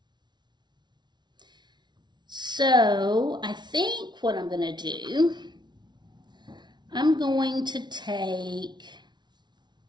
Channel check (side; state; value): left; late; 0.21 ms